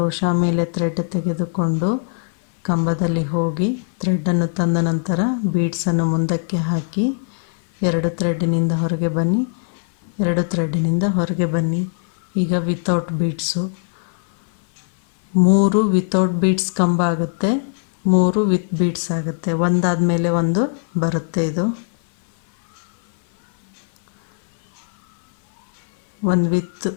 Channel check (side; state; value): right; silent; 56 dB below the other